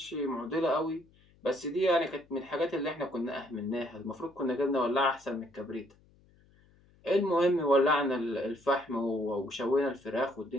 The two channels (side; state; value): left; noise; hum, 30 dB below the sound